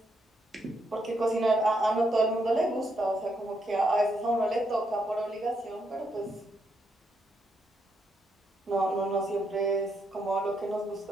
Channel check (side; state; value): both; normal; correlation 0.78